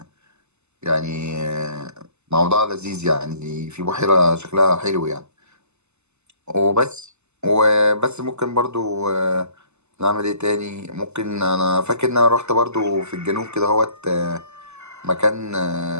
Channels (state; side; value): late; left; 0.82 ms